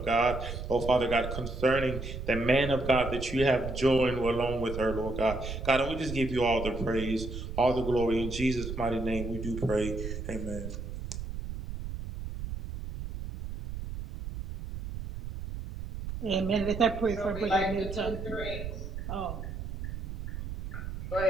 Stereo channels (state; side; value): noise; right; rumble, 7 dB below the sound